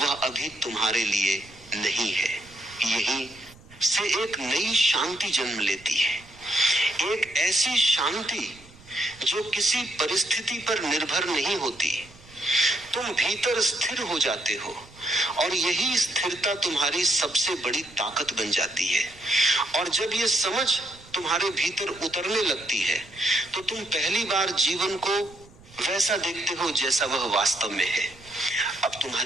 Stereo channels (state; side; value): noise; right; rumble, 24 dB below the sound